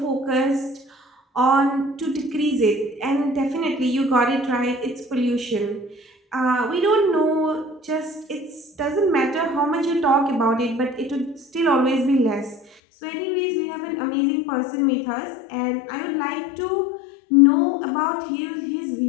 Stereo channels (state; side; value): drops out; right; at 12.7 s